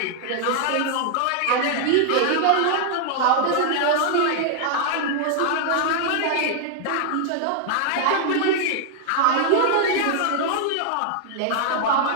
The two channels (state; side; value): different; both; correlation 0.00